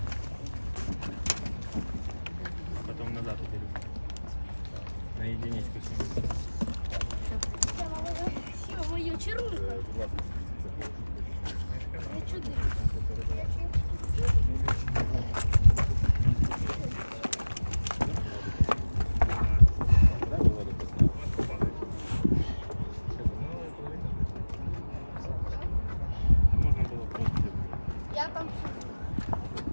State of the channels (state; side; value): inverted; both; correlation -1.00